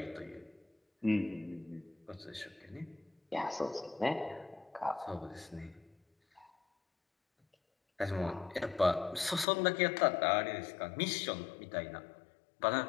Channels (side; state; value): right; drops out; at 9.5 s